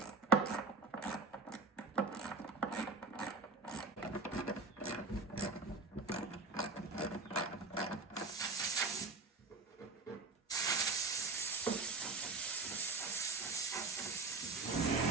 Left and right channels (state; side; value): quieter; left; 3.7 dB